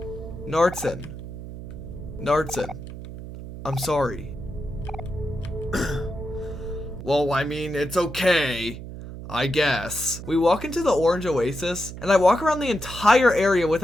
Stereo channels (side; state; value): right; noise; hum, 11 dB below the sound